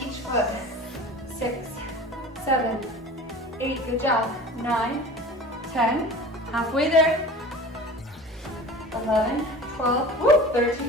each foot. 6, 7, 8, good job. 9, 10, halfway there. 11, 12, woo,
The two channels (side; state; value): both; normal; correlation 0.39